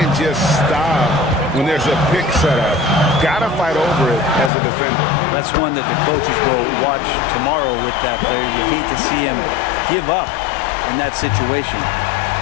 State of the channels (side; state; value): right; drops out; at 4.5 s